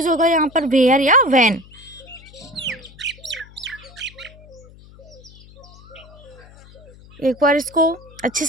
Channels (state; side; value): noise; left; hum, 22 dB below the sound